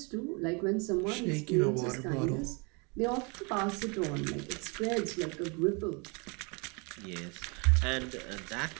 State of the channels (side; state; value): left; quieter; 32.1 dB